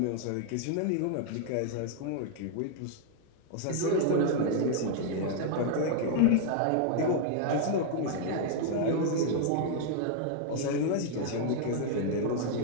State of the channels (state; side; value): different; both; correlation 0.00